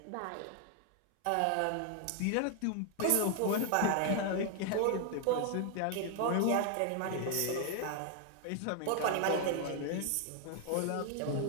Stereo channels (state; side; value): different; both; correlation 0.00